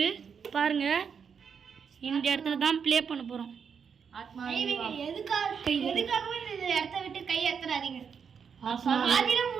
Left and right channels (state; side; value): quieter; left; 6.6 dB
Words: பாருங்க. இந்த இடத்துல தான் ப்ளே பண்ண போறோம். எதுக்காகவே இந்த இடத்த விட்டு கை ஏத்துறாதீங்க. ஆதில